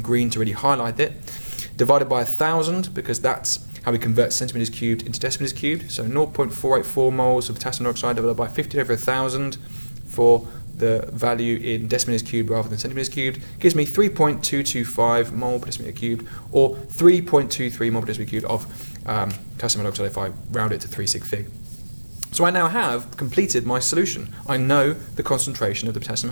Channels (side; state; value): both; inverted; correlation -1.00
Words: to really highlight it, divided by 1,000, because that's how we convert centimeters cubed into decimeters cubed. So 0.484 moles of potassium hydroxide divided by 15 over 1,000 for the value in decimeters cubed rather than centimeters cubed gives me 3.225 mole per decimeter cubed, or 3.23 mole per decimeter cubed of potassium hydroxide if I round it to 3 sig fig. So I now have completed my solution. I know the concentration of the potassium